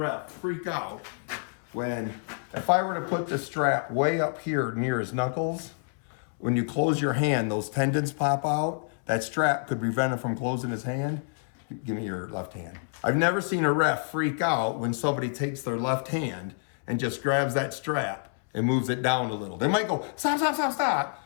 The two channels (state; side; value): silent; right; 59 dB below the other